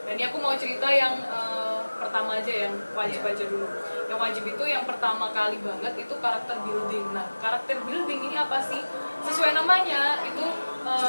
Dan ini aku mau cerita yang pertama aja, yang wajib aja dulu. Yang wajib itu yang pertama kali banget itu karakter building. Nah, karakter building ini apa sih? Sesuai namanya itu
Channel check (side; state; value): both; inverted; correlation -1.00